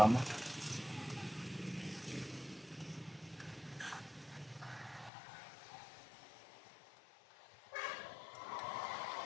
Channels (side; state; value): right; drops out; at 5.1 s